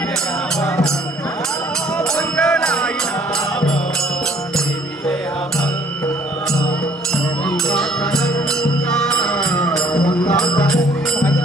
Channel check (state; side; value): normal; both; correlation 0.60